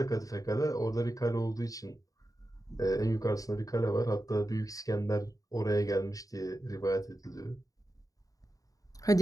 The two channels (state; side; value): late; right; 0.17 ms